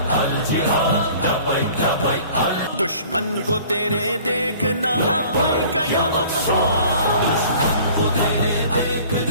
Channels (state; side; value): inverted; both; correlation -0.49